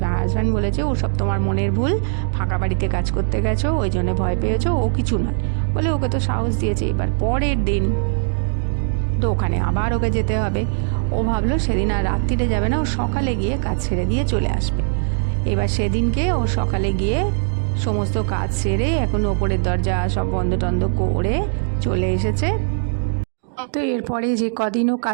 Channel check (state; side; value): silent; left; digital silence